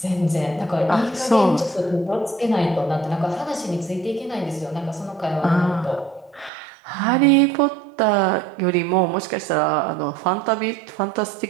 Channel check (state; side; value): drops out; left; at 6.5 s